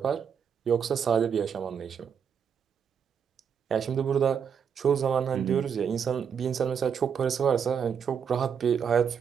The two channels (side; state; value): left; quieter; 7.3 dB